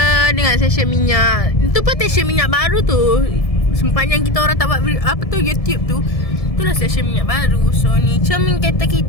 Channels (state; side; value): late; right; 1.7 ms